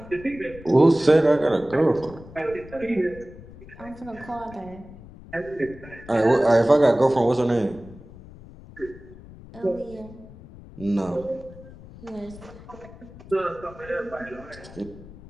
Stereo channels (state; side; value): noise; left; rumble, 18 dB below the sound